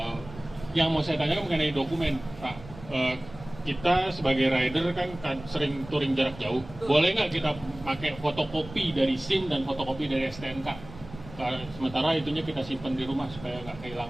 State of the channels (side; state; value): right; noise; rumble, 16 dB below the sound